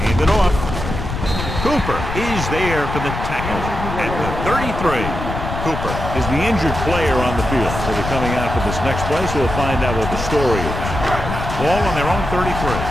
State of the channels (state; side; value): noise; left; rumble, 5 dB below the sound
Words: Hand it off. Cooper is there for the tackle at the 33. Cooper is the injured player on the field. So they're coming out for this next play, so we'll find out what the story is. Ball on their own 33.